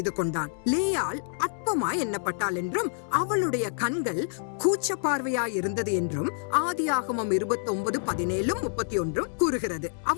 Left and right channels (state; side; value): silent; right; digital silence